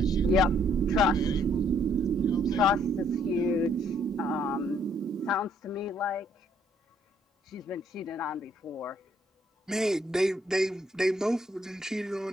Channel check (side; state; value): both; normal; correlation 0.67